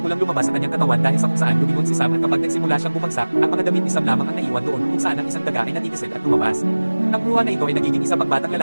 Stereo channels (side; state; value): both; inverted; correlation -1.00